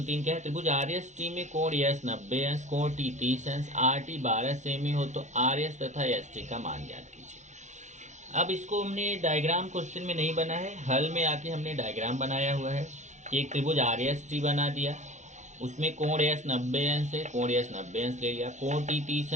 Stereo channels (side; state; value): left; late; 0.34 ms